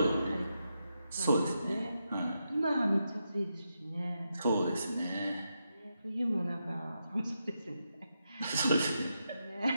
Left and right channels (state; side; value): inverted; both; correlation -0.84